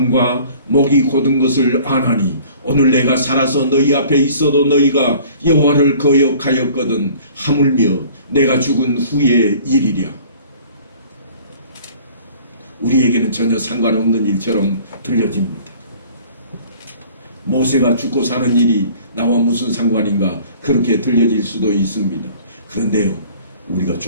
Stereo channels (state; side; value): inverted; both; correlation -0.50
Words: 목이 곧은 것을 아나니 오늘 내가 살아서 너희 앞에 있어도 너희가 여호와를 거역하였거든 하물며 내가 죽은 후의 일이랴. 우리에게는 전혀 상관없는 일처럼 들려집니다. 모세가 죽고 사는 일이 나와 무슨 상관인가 그렇게 들려질 수도 있습니다. 그런데요, 우리가